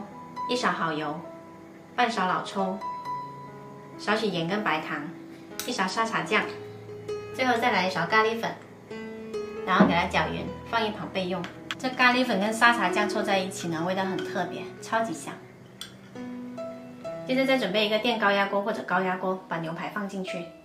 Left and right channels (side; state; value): both; identical; correlation 1.00